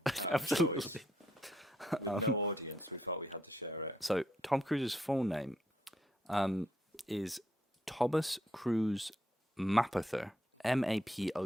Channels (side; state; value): both; normal; correlation 0.74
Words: out of choice. With no audience, we felt we had to share it. So Tom Cruise's full name is Thomas Cruise Mapother. Mapother.